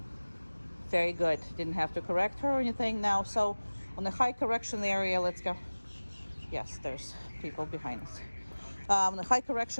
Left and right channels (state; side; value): inverted; both; correlation -1.00